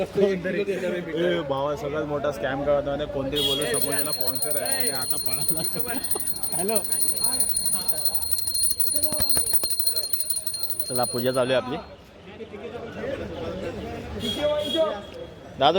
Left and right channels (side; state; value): both; identical; correlation 1.00